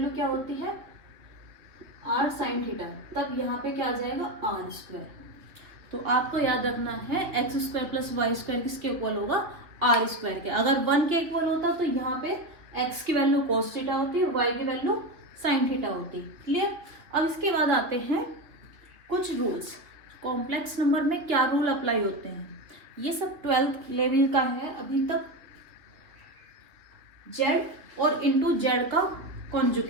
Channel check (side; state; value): left; late; 2.9 ms